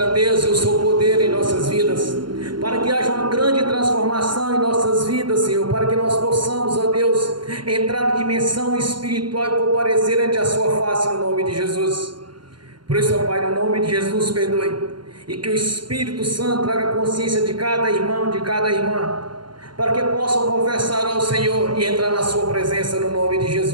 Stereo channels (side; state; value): left; late; 0.72 ms